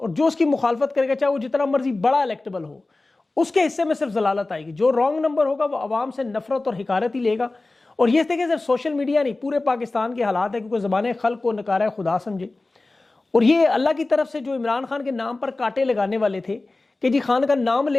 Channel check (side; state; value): right; quieter; 3.2 dB